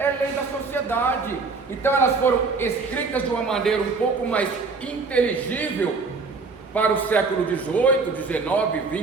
lei da sociedade. Então elas foram escritas de uma maneira um pouco mais inteligível para o século XVIII, XIX,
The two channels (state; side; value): quieter; left; 4.3 dB